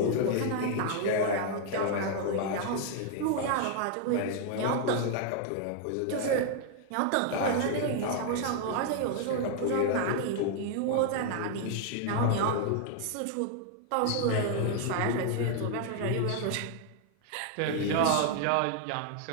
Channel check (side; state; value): both; different; correlation 0.00